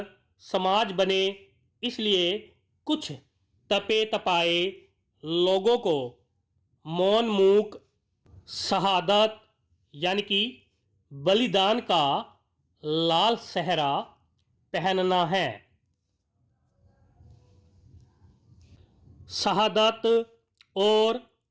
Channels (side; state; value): both; identical; correlation 1.00